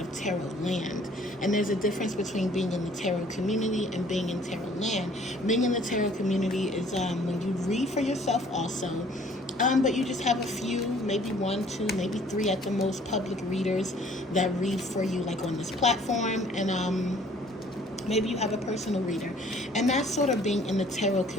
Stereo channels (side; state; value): both; normal; correlation 0.56